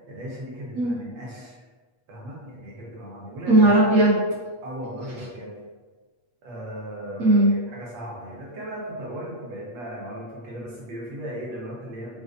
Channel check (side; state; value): left; late; 8.4 ms